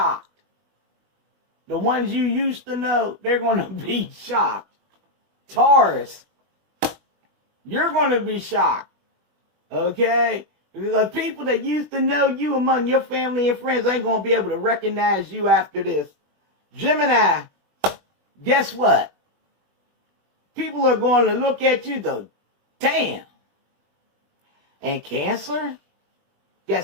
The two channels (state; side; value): late; left; 20 ms